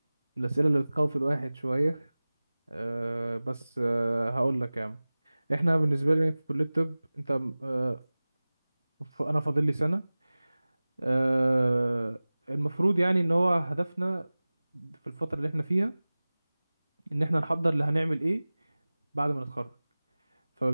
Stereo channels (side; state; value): both; inverted; correlation -0.99